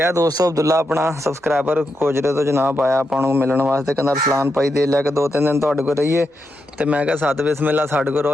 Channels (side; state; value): both; normal; correlation 0.85